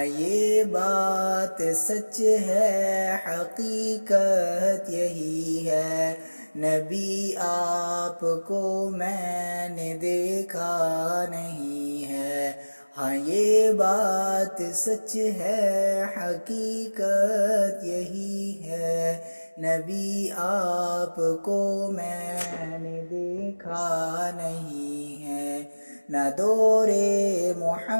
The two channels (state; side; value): inverted; both; correlation -1.00